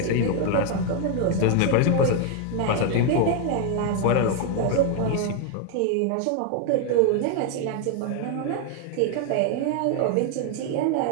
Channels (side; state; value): both; different; correlation 0.01